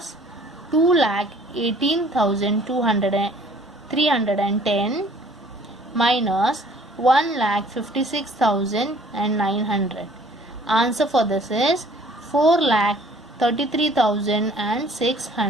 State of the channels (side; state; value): both; normal; correlation 0.55